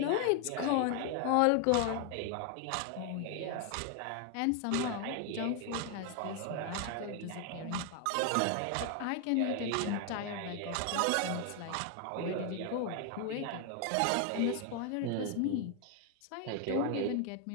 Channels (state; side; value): different; both; correlation 0.01